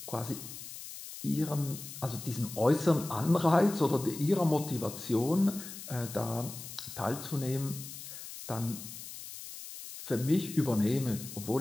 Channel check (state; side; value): noise; left; hiss, 11 dB below the sound